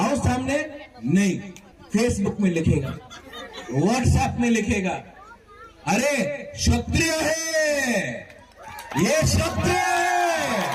सामने। नहीं, फेसबुक में लिखेगा, व्हाट्सएप में लिखेगा, अरे क्षत्रिय है, ये क्षत्रिय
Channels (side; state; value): both; identical; correlation 1.00